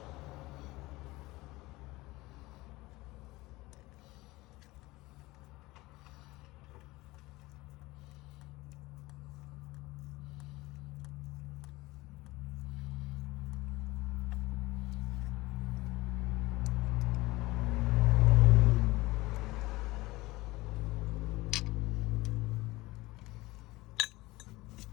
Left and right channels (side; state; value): right; quieter; 20.3 dB